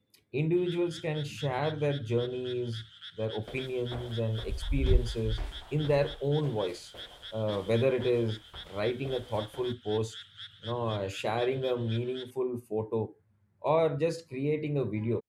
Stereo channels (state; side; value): identical; both; correlation 1.00